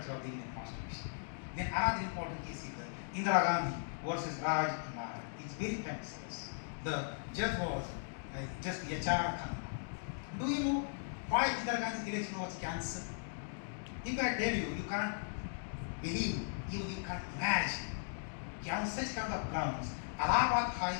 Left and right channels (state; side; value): silent; right; digital silence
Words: of the Indian Constitution. Then another important case is the Indira Gandhi versus Raj Nara. It's very famous case. The judge was just H.R. Khanna. Do you know why Indira Gandhi's election was cancelled? If I tell you, you can't believe, even you can't imagine. On such kind of grounds, Allahabad